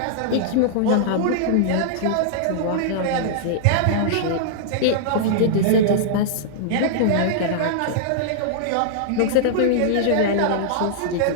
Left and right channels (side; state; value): both; different; correlation -0.02